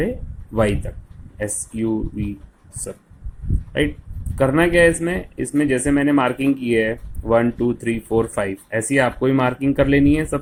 वाई तक, एस यू वी सब, राइट. करना क्या है इसमें जैसे मैंने मार्किंग की है 1 2 3 4 5, ऐसी आपको ही मार्किंग कर लेनी है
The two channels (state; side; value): identical; both; correlation 1.00